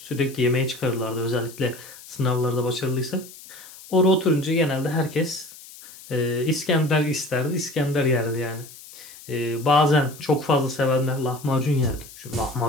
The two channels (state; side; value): noise; left; hiss, 18 dB below the sound